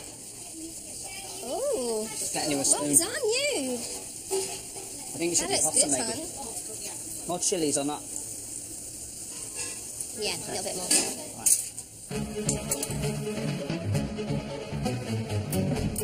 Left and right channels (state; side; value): identical; both; correlation 1.00